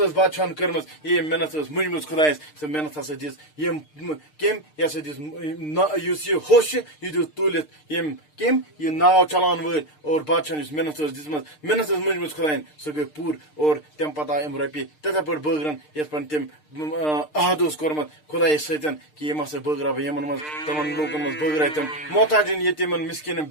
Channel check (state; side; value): late; right; 6.6 ms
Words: بادشاہن کٔرمٕژ ییٚمۍ محنت ٲس مٔنجمٕژ خۄدایس سۄ محنت ہسا دِژ یِم کٔمۍ یہِ ہسا دِژ یُس یہِ ہوٚس چھُ یہِ دیُت تُلِتھ یِم کٔمۍ یہِ ناو چلاون وٲلۍ اور بادشاہن یُس محنت ٲس دِژمٕژ محنت ٲس مٔنجمٕژ خۄداین سۄ گٔے پوٗرٕ اور تَمہِ پتہٕ آے یِم رۄپیہِ تِتھے پٲٹھۍ بٲگرن یِتھ پٲٹھۍ تٔمۍ عہد اوس کوٚرمُت خۄدایس سۭتۍ کہِ یِم ہسا بٲگراو بہٕ یِمن منٛز تِمن لوٗکن منٛز بٲگراے تِم محتاجن یتیٖمن مِسکیٖنن